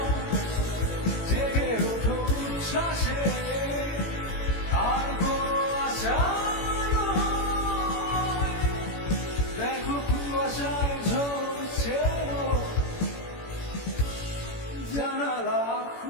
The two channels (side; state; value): right; late; 18 ms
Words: জেগে ওঠো উচ্ছ্বাসে আর কোনো আশা নয়। দেখো কুয়াশায় ঝরছে জানালা